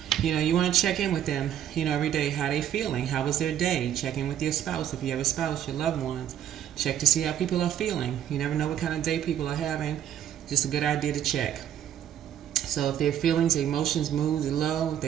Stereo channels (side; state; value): left; quieter; 10.3 dB